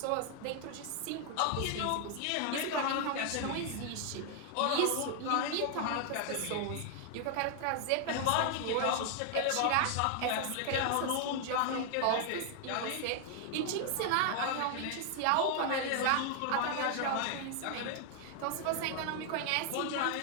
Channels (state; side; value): different; both; correlation 0.00